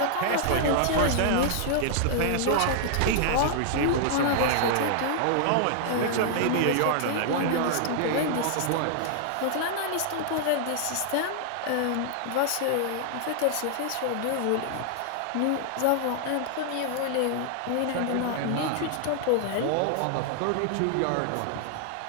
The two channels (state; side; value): different; both; correlation -0.01